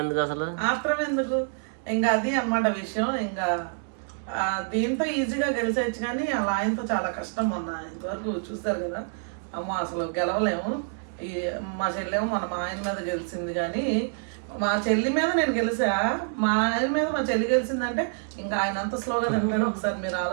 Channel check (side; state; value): left; silent; 60 dB below the other